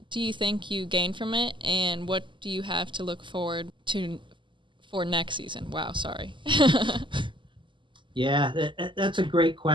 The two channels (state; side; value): late; left; 0.24 ms